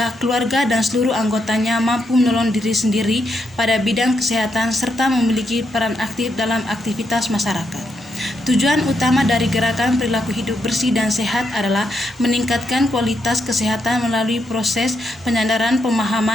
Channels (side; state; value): both; normal; correlation 0.80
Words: keluarga dan seluruh anggotanya mampu menolong diri sendiri pada bidang kesehatan serta memiliki peran aktif dalam aktivitas masyarakat. Tujuan utama dari gerakan perilaku hidup bersih dan sehat adalah meningkatkan kualitas kesehatan melalui proses penyadaran